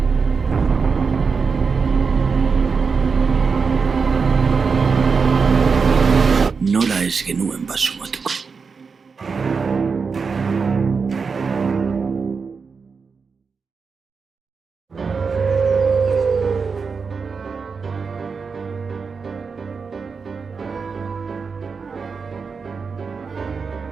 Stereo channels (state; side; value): quieter; left; 5.2 dB